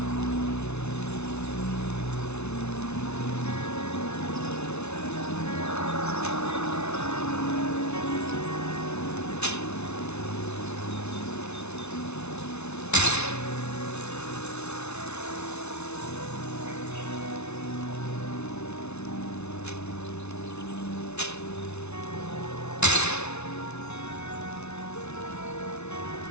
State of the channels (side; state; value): right; late; 0.81 ms